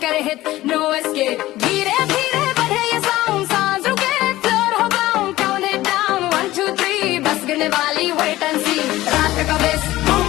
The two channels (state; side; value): quieter; right; 16.5 dB